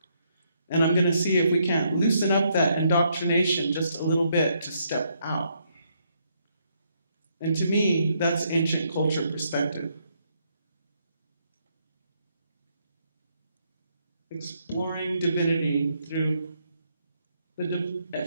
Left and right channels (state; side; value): inverted; both; correlation -0.74